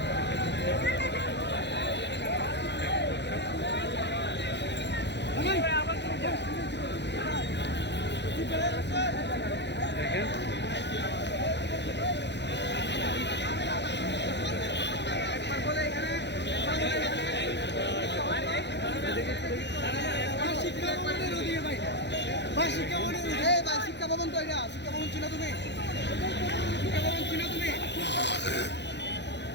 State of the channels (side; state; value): right; late; 0.50 ms